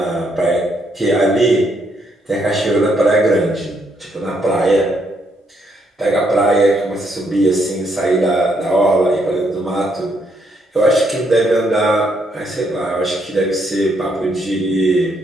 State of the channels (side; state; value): both; normal; correlation 0.74